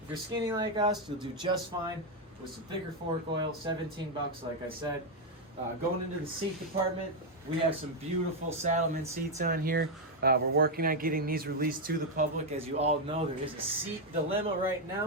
if you're skinny like us, you'll do just fine with some thicker fork oil. 17 bucks, like I said. Going into the seat department, we have some beautiful Saddlemen seats on here. We're working on getting these released to the public. As you all know, there is a seat dilemma right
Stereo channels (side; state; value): both; normal; correlation 0.02